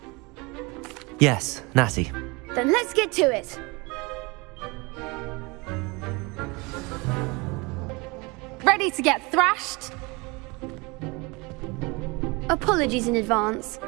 Yes, Natty. Then let's get to it. Ready to get thrashed? Apologies in advance.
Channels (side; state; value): left; quieter; 26.4 dB